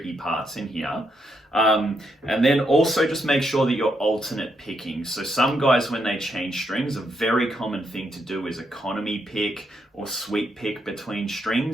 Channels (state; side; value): normal; both; correlation 0.78